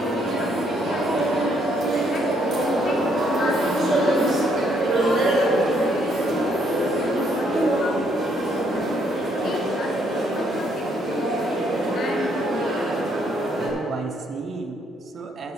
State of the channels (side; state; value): both; normal; correlation 0.70